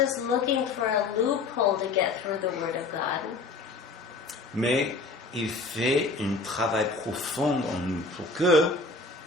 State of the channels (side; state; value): right; quieter; 3.7 dB